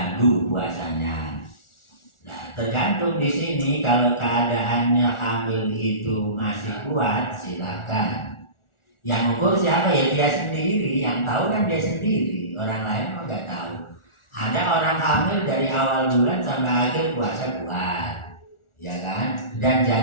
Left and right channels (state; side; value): late; right; 1.4 ms